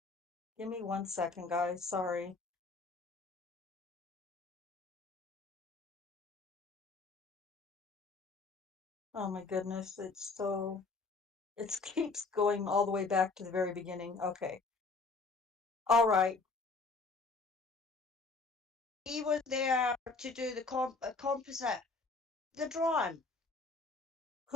Give me 1 second, guys. Sorry. Oh my goodness. It keeps going all the way back to the very beginning. Okay. All right. He was there to do the composite, the drawing.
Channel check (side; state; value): right; quieter; 4.0 dB